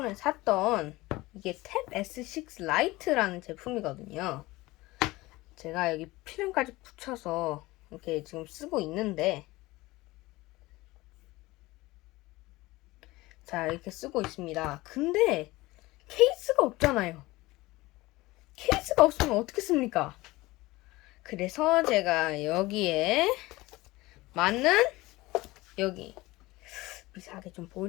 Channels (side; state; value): right; quieter; 20.0 dB